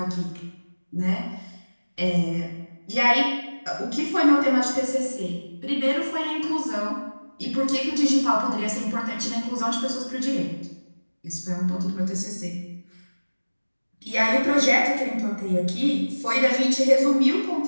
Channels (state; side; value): inverted; both; correlation -1.00